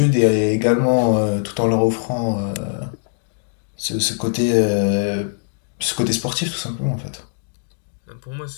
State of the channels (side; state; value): right; silent; digital silence